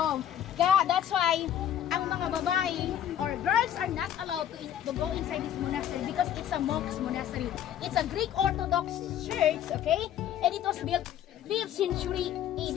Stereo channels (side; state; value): right; quieter; 10.6 dB